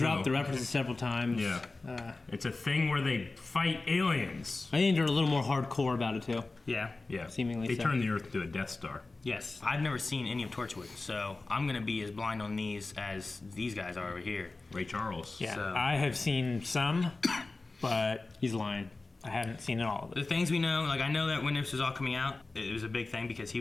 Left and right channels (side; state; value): right; quieter; 3.4 dB